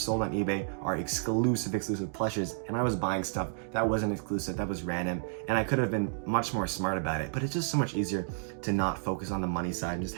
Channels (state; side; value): silent; left; digital silence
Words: on eBay are exclusive plushes, and I was buying stuff that wasn't exclusive, that was random, and I could have been much more smart about it. But it's just so much easier to not focus on the money side and just